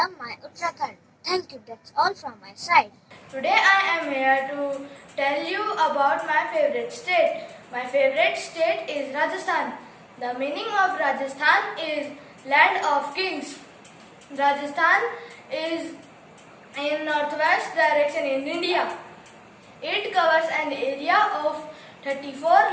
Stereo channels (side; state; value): both; identical; correlation 1.00